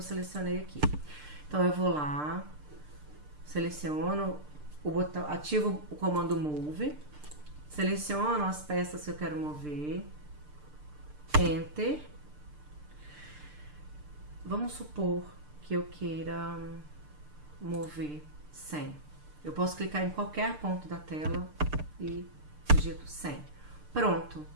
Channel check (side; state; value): left; late; 6.7 ms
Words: selecionei aqui. Então eu vou lá, seleciono o botão, ativo o comando Move, seleciono as peças que eu quero mover, Enter. Vamos supor que eu queira mover 100. Eu posso clicar em qualquer ponto da tela e digito 100. Pronto.